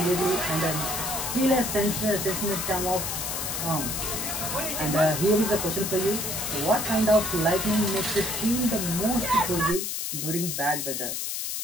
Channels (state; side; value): noise; left; hiss, 3 dB below the sound